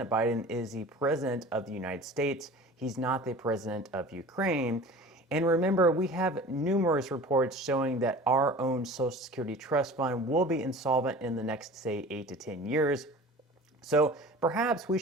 Biden is the president of the United States. He's not the president of Ukraine. And remember, we have numerous reports showing that our own Social Security trust fund will be insolvent in the next, say, 8 to 10 years. So perhaps we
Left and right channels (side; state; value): both; normal; correlation 0.40